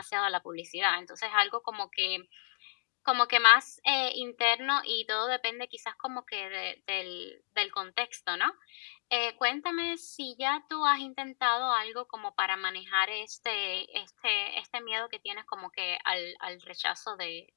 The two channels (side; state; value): right; silent; digital silence